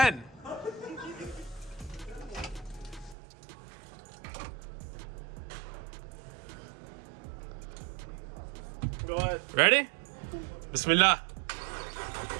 Go ahead. Ready? Bismillah.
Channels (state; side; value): drops out; left; at 3.2 s